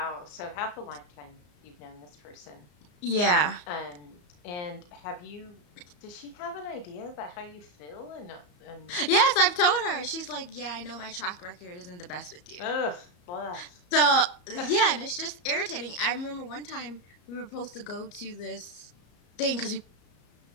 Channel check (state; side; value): late; right; 34 ms